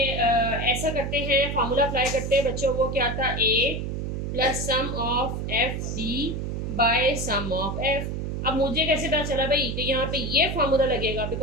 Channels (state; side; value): noise; right; hum, 3 dB below the sound